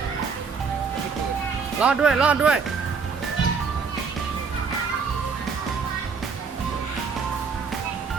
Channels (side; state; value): left; quieter; 5.4 dB